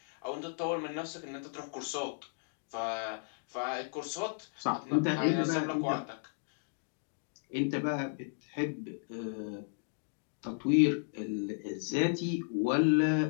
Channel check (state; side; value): silent; right; digital silence